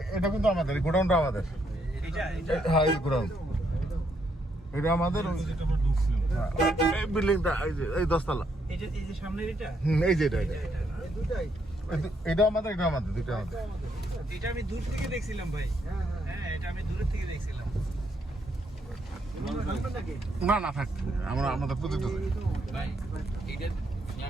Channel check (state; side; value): normal; both; correlation 0.75